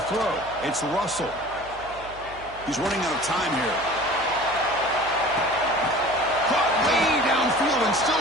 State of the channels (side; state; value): right; noise; hum, 19 dB below the sound